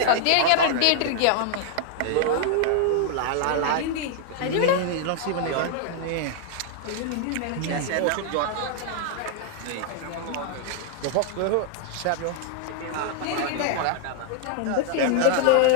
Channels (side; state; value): both; different; correlation 0.00